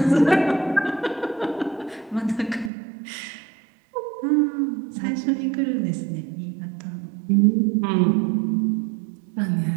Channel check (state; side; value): drops out; left; at 2.7 s